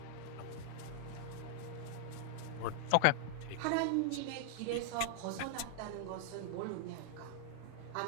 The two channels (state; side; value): different; both; correlation 0.00